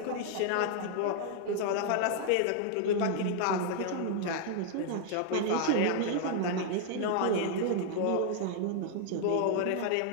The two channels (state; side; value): different; both; correlation 0.00